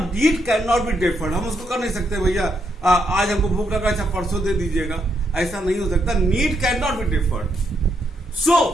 need can not be deferred. हम उसको कर नहीं सकते भैया आज हमको भूख लगा, अच्छा परसों दे दीजिएगा, ऐसा नहीं हो सकता। Need can not be deferred.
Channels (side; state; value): both; normal; correlation 0.77